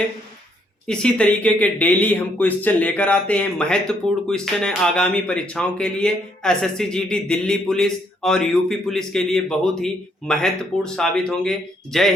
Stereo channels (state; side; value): normal; both; correlation 0.71